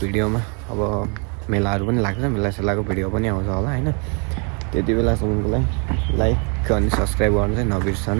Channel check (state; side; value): quieter; left; 36.7 dB